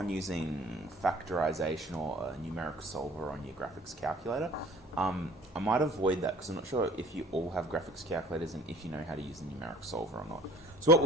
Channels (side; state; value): both; normal; correlation 0.51